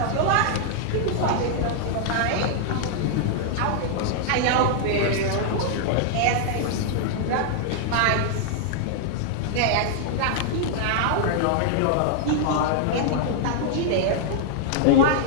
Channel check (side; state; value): both; different; correlation -0.01